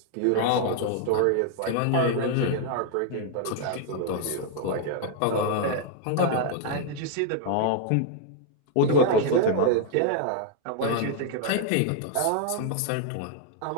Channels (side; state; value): both; different; correlation 0.00